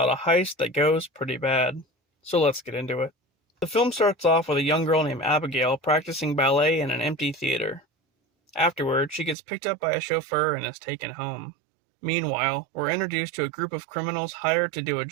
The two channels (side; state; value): left; drops out; at 9.3 s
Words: a heist that goes pretty bad. So let's get into it. The film starts off with a young girl named Abigail practicing ballet in an empty theater. Afterward, she gets picked up by a chauffeur and is taken home. Meanwhile, we're introduced to a group of criminals hired to do a